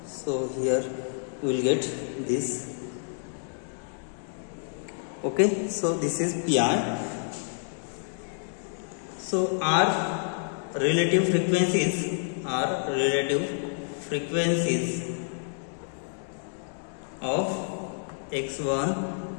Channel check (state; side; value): silent; right; digital silence